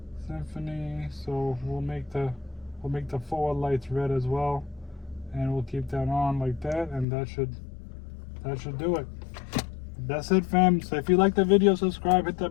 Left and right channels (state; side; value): drops out; right; at 7.1 s